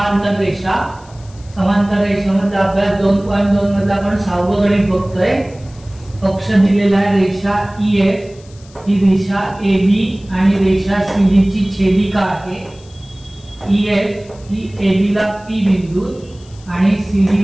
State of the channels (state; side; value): noise; left; hiss, 26 dB below the sound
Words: रेषा। समांतर रेषेमध्ये अभ्यास 2.2 मध्ये आपण 6वं गणित बघतोय। पक्ष दिलेला आहे रेषा EF, ही रेषा AB आणि रेषा CD ची छेदिका आहे। EF ही AB ला P बिंदू आणि CD